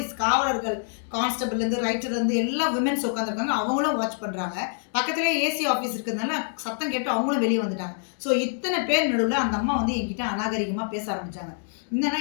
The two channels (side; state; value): right; silent; 61 dB below the other